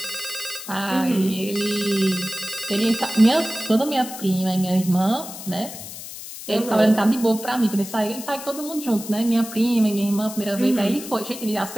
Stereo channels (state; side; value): noise; left; hiss, 11 dB below the sound